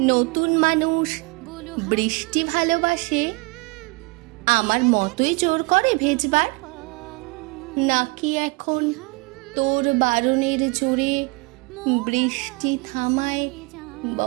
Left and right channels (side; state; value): left; quieter; 27.4 dB